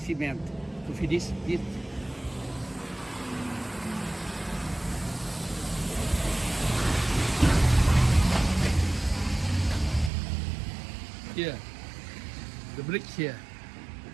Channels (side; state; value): left; drops out; at 10.1 s